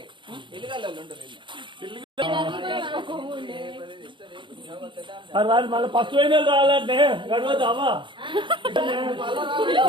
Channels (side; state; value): left; late; 0.23 ms